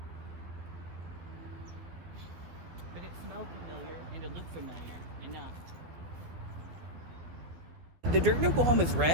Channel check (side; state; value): left; late; 12 ms